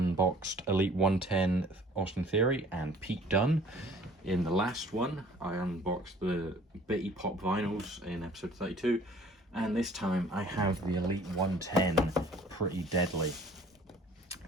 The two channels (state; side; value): normal; both; correlation 0.52